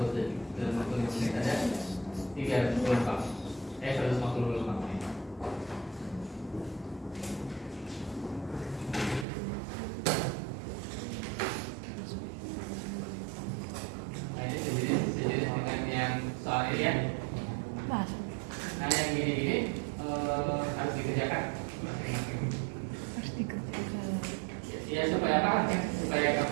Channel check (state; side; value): drops out; left; at 9.2 s